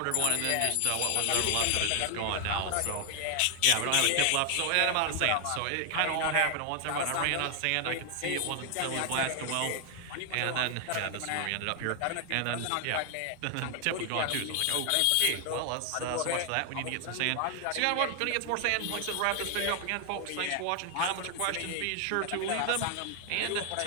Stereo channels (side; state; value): both; different; correlation 0.00